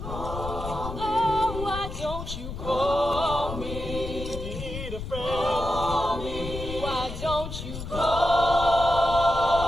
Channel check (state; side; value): noise; left; rumble, 8 dB below the sound